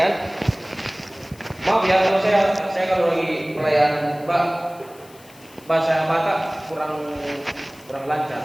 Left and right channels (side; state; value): left; noise; hiss, 24 dB below the sound